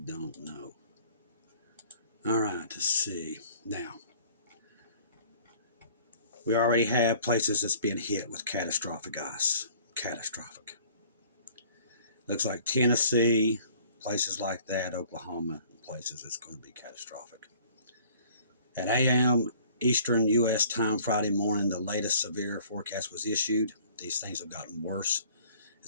know. All right, let's see. Now, we already have places that's being hit with catastrophic ice. Catastrophic. Looks like Tennessee, places like that, Oklahoma, places it's going to be catastrophic. At Eastern U.S. time Friday morning, the latest severe forecast was issued. These things have gotten worse.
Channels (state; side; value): inverted; both; correlation -0.53